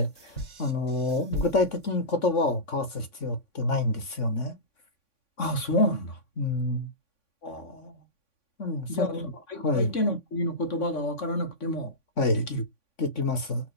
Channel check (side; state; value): right; late; 3.5 ms